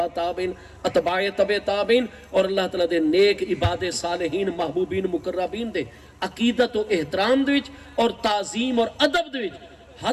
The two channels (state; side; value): identical; both; correlation 1.00